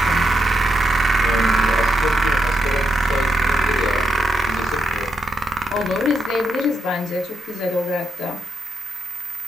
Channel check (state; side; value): normal; both; correlation 0.83